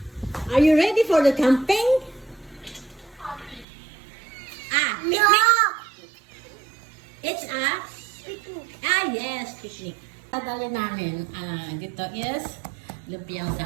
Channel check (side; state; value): left; drops out; at 3.7 s